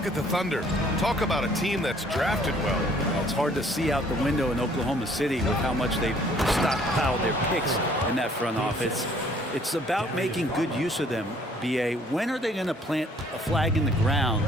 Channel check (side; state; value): both; normal; correlation 0.60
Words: at the Thunder. Talk about a team that's drafted well. It's hard to see out the window in Oklahoma City with how much they've stockpiled their picks in that front office. It's about making good use of them, B.A. When are they going to plant a flag in the ground